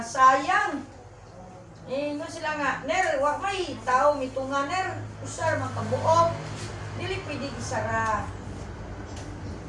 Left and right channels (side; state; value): both; identical; correlation 1.00